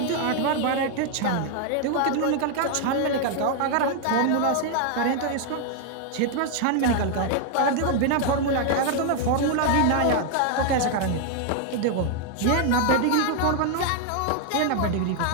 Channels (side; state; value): both; different; correlation 0.00